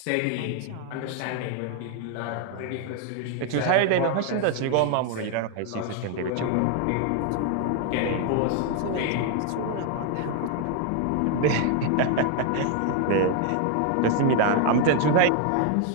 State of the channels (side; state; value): both; different; correlation 0.00